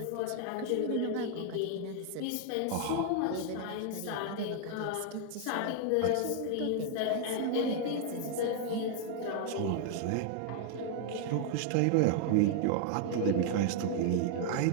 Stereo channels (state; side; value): different; both; correlation 0.00